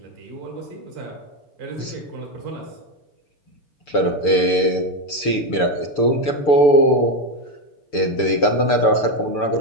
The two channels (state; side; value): late; right; 6.8 ms